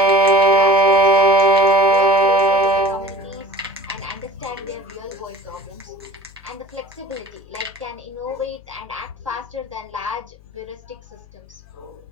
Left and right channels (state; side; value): noise; left; hum, 24 dB below the sound